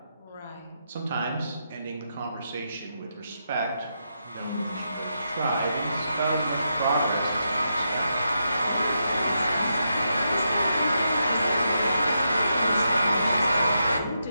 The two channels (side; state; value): both; inverted; correlation -0.84